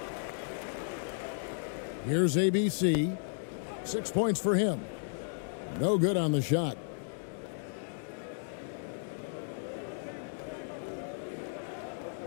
Here's ABC. 6 points for him. No good on the shot.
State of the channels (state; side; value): silent; right; digital silence